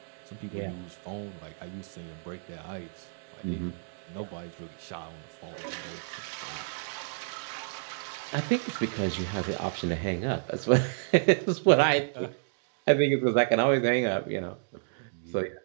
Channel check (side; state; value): left; silent; digital silence